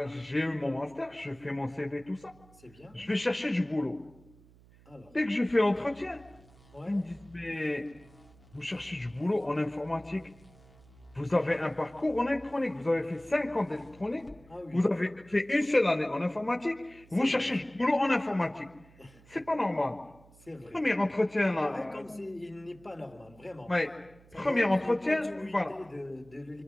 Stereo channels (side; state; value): right; noise; hum, 25 dB below the sound